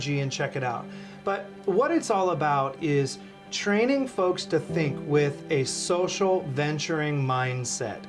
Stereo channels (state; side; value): identical; both; correlation 1.00